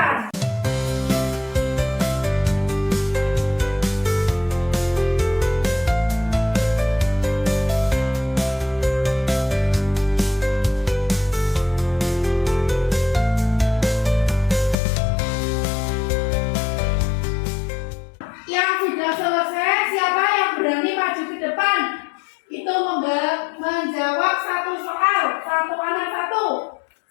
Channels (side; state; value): right; drops out; at 14.8 s